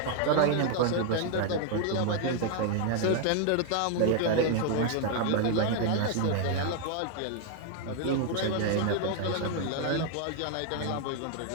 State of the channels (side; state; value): both; different; correlation 0.01